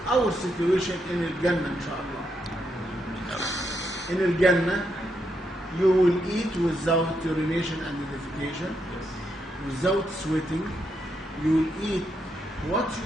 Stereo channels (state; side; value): normal; both; correlation 0.80